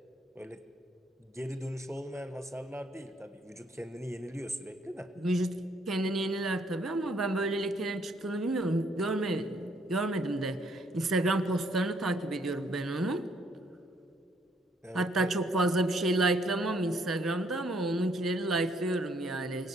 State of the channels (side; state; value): both; normal; correlation 0.68